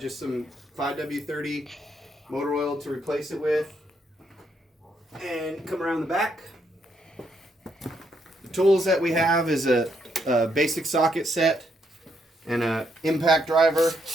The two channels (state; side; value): normal; both; correlation 0.75